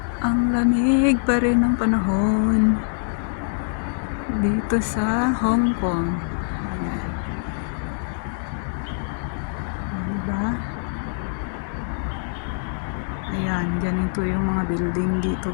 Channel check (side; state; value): right; silent; digital silence